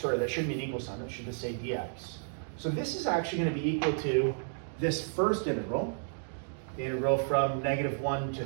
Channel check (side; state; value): left; silent; digital silence